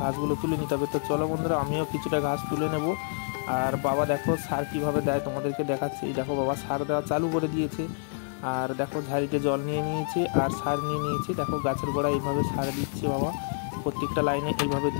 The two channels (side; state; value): right; silent; 58 dB below the other